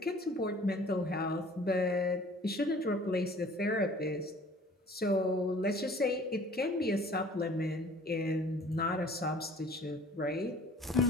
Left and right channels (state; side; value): normal; both; correlation 0.51